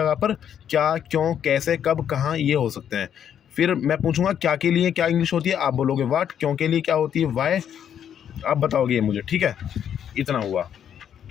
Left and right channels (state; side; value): quieter; right; 9.1 dB